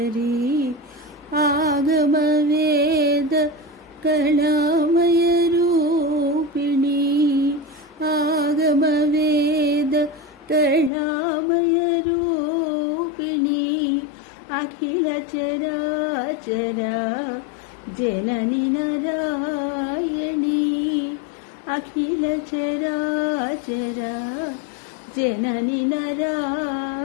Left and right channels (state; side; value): drops out; right; at 10.9 s